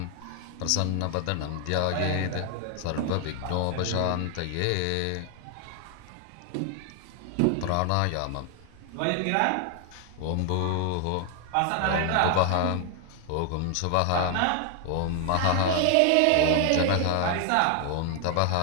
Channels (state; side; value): different; both; correlation 0.00